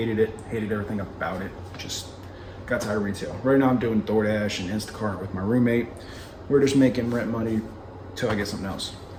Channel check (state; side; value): identical; both; correlation 1.00